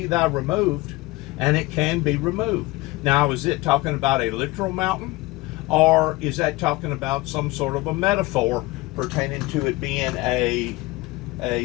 thou removed, and it can be removed. Now, is it talking about a literal mountain? Or is that talking about some sort of a metaphor pertaining to it being a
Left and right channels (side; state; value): right; quieter; 21.0 dB